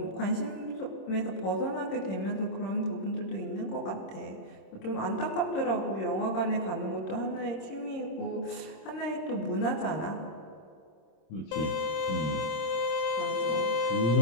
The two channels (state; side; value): late; right; 26 ms